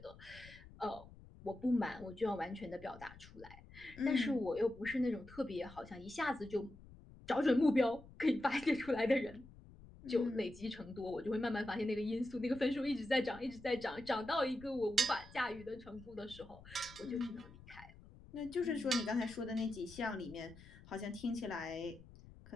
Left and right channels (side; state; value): left; noise; rumble, 19 dB below the sound